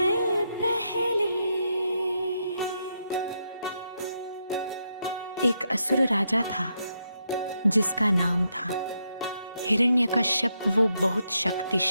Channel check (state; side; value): inverted; both; correlation -0.81